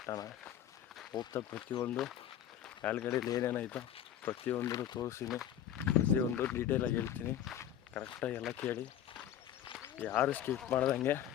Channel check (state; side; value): quieter; right; 10.7 dB